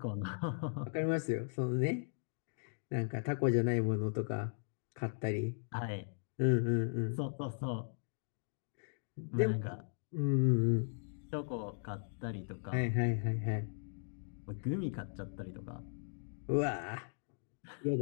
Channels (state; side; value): silent; right; digital silence